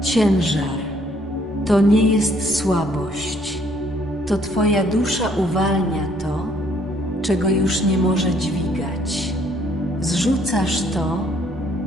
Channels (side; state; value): both; normal; correlation 0.65